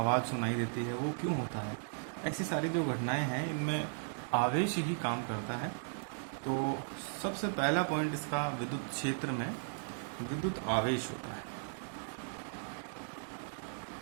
सुनाई देती है, वो क्यों होता है। ऐसी सारी जो घटनाएं हैं इनमें आवेश ही काम करता है। तो सबसे पहला पॉइंट इसका विद्युत क्षेत्र में विद्युत आवेश होता है।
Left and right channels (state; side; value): silent; left; digital silence